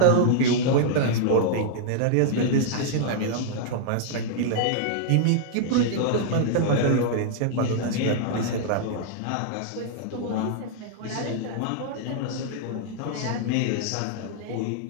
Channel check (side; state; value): both; different; correlation -0.01